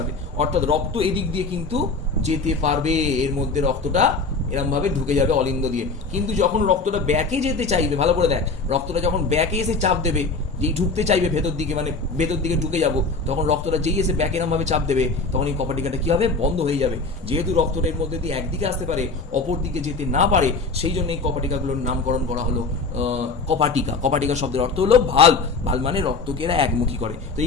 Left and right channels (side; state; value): right; quieter; 3.9 dB